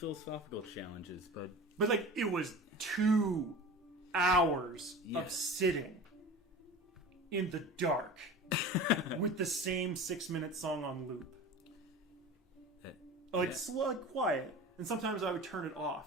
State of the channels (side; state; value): both; normal; correlation 0.35